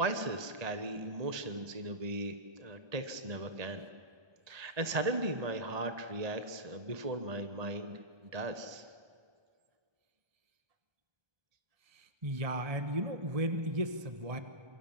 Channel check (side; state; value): left; late; 1.2 ms